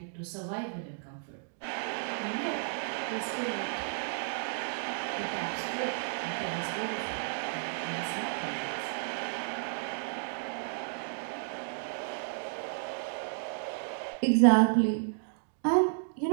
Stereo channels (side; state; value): left; silent; digital silence